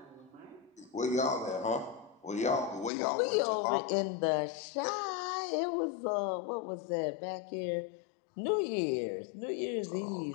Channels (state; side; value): drops out; right; at 2.9 s